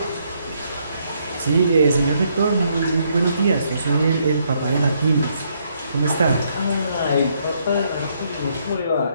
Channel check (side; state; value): both; inverted; correlation -0.72